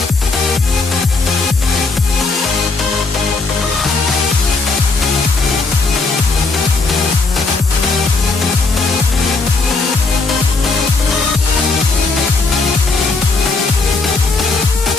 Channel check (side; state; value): right; quieter; 3.8 dB